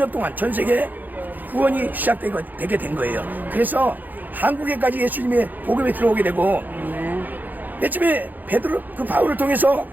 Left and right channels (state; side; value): late; left; 0.085 ms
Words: 동안 전 세계에 구원이 시작되게 된 거예요. 그래서 한국에까지 예수님의 복음이 들어오게 되고, 맨 처음에 바울을 통해서